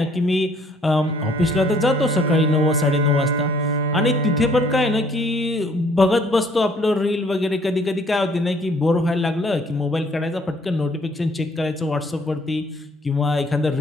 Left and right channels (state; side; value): normal; both; correlation 0.61